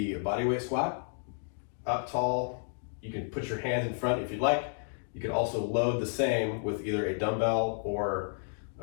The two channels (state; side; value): silent; right; digital silence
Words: bodyweight squat. Up tall, you can put your hands in front if you'd like. You can also load the same with either a dumbbell or